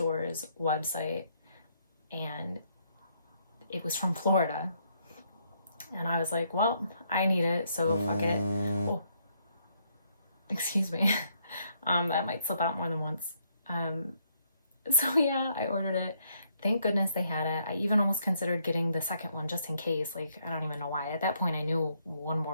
website, and it was from Florida. And I was like, well, I need it, so fuck it. Oh, excuse me. That might slip out more than once. So yeah, I ordered it. Thank goodness they had it. I even almost considered getting the second one just in case. Like, I don't even know why. At that point, I knew one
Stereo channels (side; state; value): both; inverted; correlation -0.72